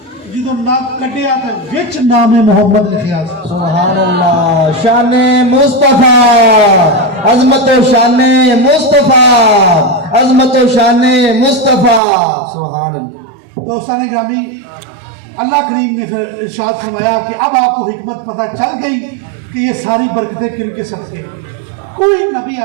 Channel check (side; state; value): left; drops out; at 12.0 s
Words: جدو نگ کٹیا تو وچ نام محمد لکھیا سبحان اللہ شان مصطفیٰ عظمت و شان مصطفیٰ عظمت و شان مصطفیٰ سبحان اللہ دوستان گرامی اللہ کریم نے پھر ارشاد فرمایا کہ اب آپ کو حکمت پتہ چل گئی کہ یہ ساری برکتیں کن کے صدقے کوئی نبی